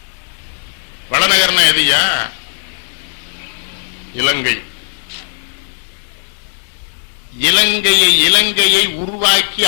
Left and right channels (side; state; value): right; silent; 69 dB below the other